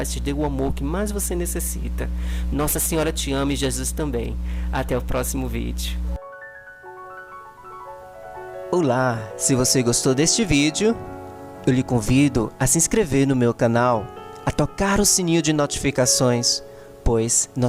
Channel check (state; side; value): identical; both; correlation 1.00